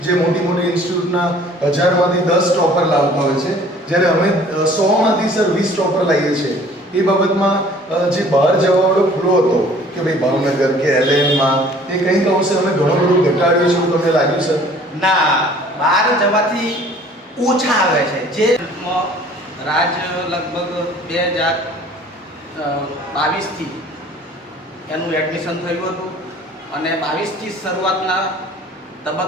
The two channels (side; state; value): both; normal; correlation 0.52